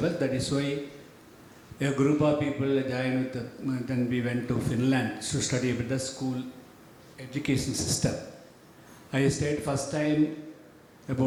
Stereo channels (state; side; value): identical; both; correlation 1.00